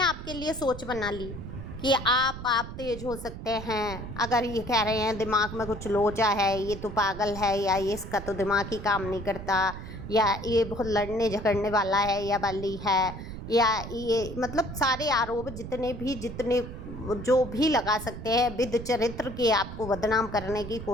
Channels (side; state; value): right; noise; rumble, 10 dB below the sound